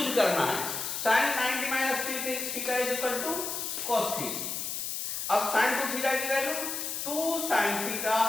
करना है। sin 90 minus 3 theta is equal to cos theta. अब sin 2 थीटा की value 2 sin theta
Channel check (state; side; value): noise; left; hiss, 3 dB below the sound